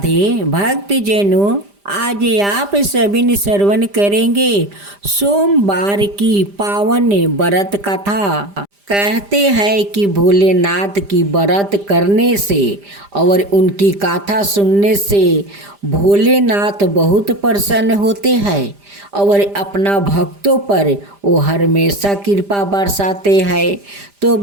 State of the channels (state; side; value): late; left; 5.0 ms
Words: भक्तजनों, आज आप सभी ने श्रवण करेंगे सोमवार की पावन व्रत कथा। कहते हैं कि भोलेनाथ की व्रत करने से और उनकी कथा सुनने से भोलेनाथ बहुत प्रसन्न होते हैं और अपना भक्तों पर वो हमेशा कृपा बरसाते हैं। तो